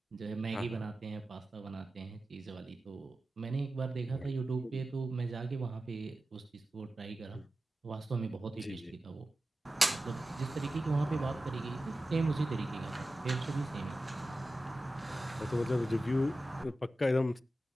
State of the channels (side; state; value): both; normal; correlation 0.94